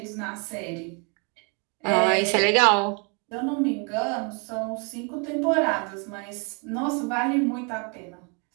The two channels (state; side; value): quieter; left; 35.1 dB